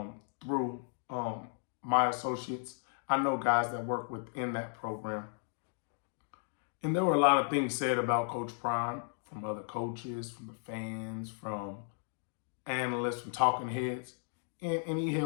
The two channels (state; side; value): silent; right; 54 dB below the other